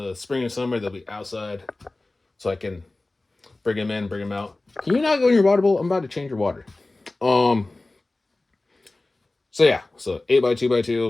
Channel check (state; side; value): quieter; right; 3.0 dB